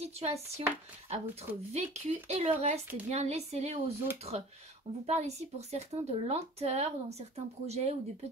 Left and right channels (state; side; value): normal; both; correlation 0.43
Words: à votre vécu et le reste, eh bien, laissez-les aux autres. On vous parle ici pour certains de lenteur dans certains projets ou de